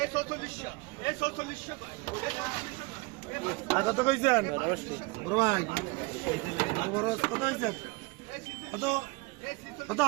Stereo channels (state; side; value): quieter; left; 26.0 dB